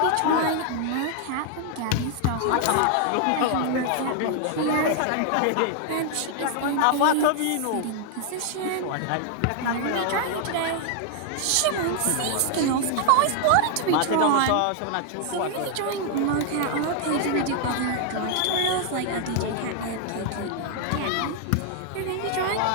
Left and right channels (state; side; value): different; both; correlation 0.00